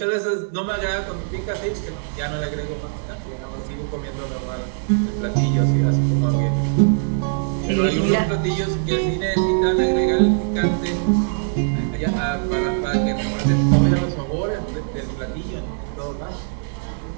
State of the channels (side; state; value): left; silent; digital silence